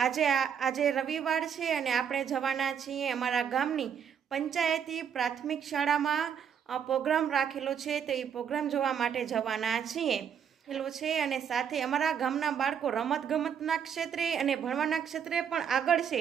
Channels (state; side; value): quieter; left; 8.0 dB